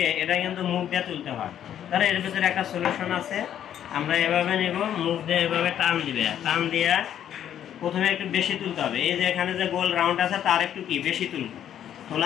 এটা কিন্তু মুখ দিয়ে তুলতে হয়। তাহলে এর ভিতরে একটা সলিউশন আছে, আমরা এভাবে নেব, মুখ দিয়ে এভাবে টান দিবে, টান দিয়ে প্রথমে একটু বেশি তুলতে হবে। এই যে এখানে যে গোল রাউন্ড আছে তার একটু কি বেশি তুলব।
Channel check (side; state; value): right; quieter; 10.2 dB